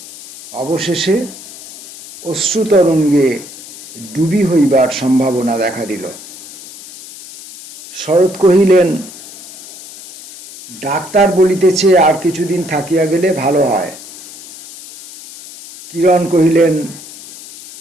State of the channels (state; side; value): noise; left; hiss, 16 dB below the sound